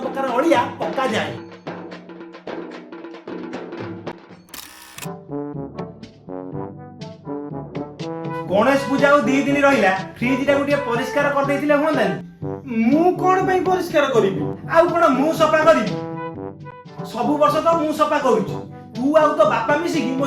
प्रकार अळिया पक्का जाय। गणेश पूजा और 2 दिन रहिला फ्रिज टा गोटे परिष्कार कर देथिले होंदानी मु कोन पई परिष्कार करिबि आउ कोन मु सफा करिबि सब वर्ष तो मु सफा करूची तू आउ तो बापा मिसी कि मो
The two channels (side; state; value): both; identical; correlation 1.00